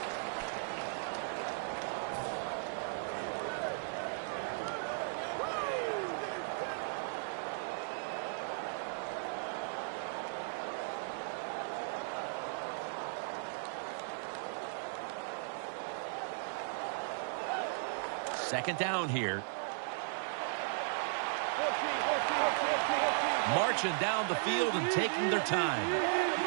Second down here. Marching down the field and taking their time.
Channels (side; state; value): left; silent; digital silence